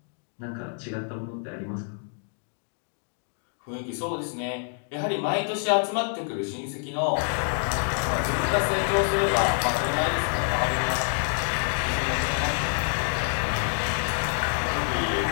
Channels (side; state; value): right; silent; 60 dB below the other